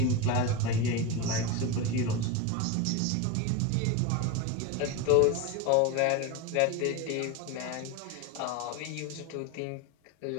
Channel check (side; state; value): both; different; correlation 0.05